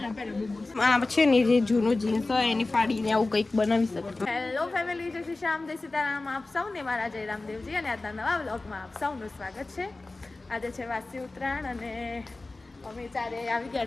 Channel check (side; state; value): right; quieter; 3.2 dB